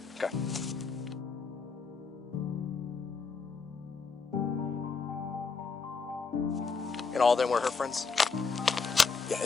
Okay. And all of them were her friends? Yeah,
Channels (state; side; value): quieter; right; 4.8 dB